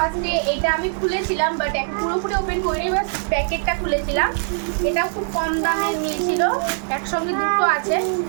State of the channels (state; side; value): silent; left; 64 dB below the other